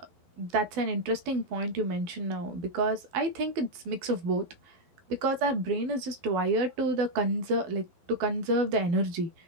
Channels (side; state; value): left; late; 12 ms